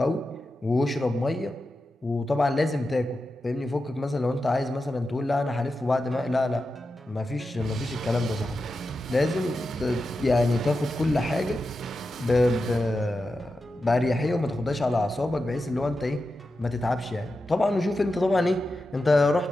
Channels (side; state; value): both; normal; correlation 0.90